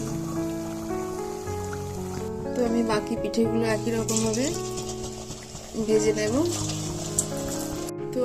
তো আমি বাকি পিঠেগুলো একই রকম ভাবে ভেজে নেব। তো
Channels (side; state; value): both; identical; correlation 1.00